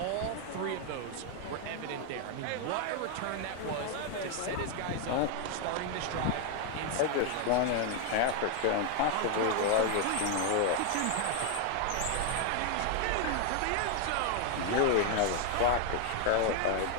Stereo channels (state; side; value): different; both; correlation 0.00